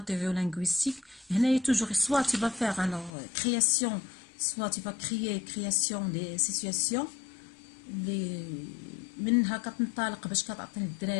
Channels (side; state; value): right; drops out; at 3.1 s